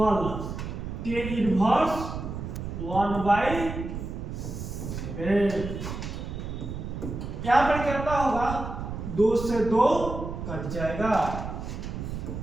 tan inverse 1/7। यहाँ पर कितना होगा 2 से 2 कट जाएगा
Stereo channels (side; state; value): right; noise; rumble, 6 dB below the sound